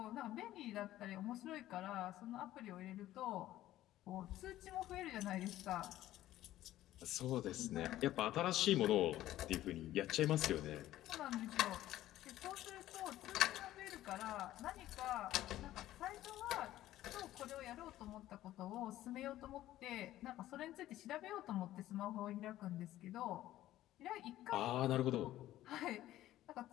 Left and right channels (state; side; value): quieter; right; 14.3 dB